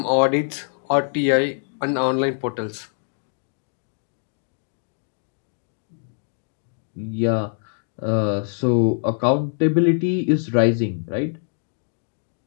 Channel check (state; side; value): silent; right; 60 dB below the other